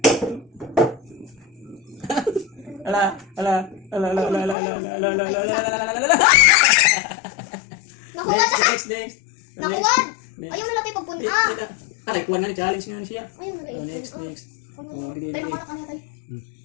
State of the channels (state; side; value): drops out; right; at 4.5 s